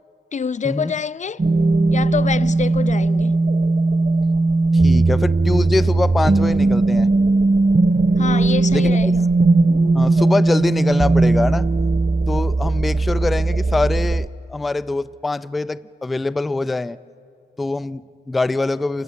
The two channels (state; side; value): normal; both; correlation 0.90